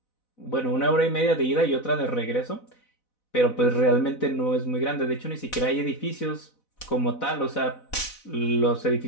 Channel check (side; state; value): right; late; 4.0 ms